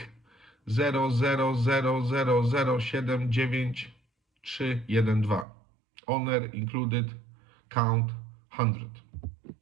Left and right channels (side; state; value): left; drops out; at 5.5 s